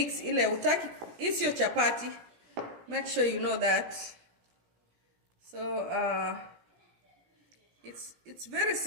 ile utaki. It's your chapati. Make sure you know that. So it's very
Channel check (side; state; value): left; late; 17 ms